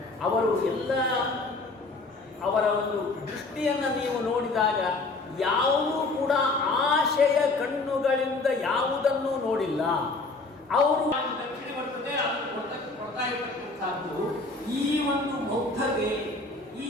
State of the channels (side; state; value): right; quieter; 3.5 dB